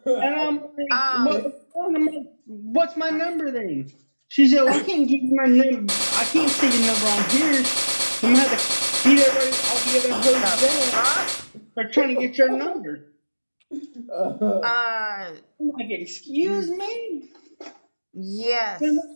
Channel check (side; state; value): both; inverted; correlation -1.00